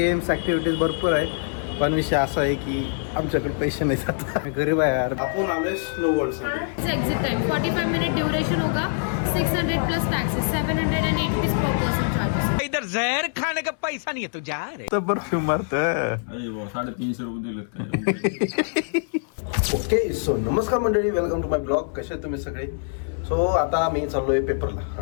activities भरपूर आहे, पण विषय असा आहे की आमच्याकडे पैसे नाही जात, गरीब आहे यार. आपण आलोय स्नो वर्ल्डसाठी. एग्जिट टाइम 45 मिनट ड्यूरेशन होगा, 600 plus taxes, 780 rupees per person charges. इधर जहर खाने का पैसा नहीं है तू जा रे. तर परफ्यूम मारत. 350 रुपये दिलेत. ओके सो नमस्कार मंडळी, वेलकम टू माय ब्लॉग. कसे आहेत तुम्ही सगळे? सो आता मी चाललोय पेपरला.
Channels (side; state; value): right; silent; 62 dB below the other